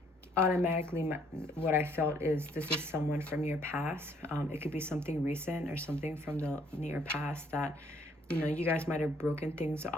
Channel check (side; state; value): both; normal; correlation 0.64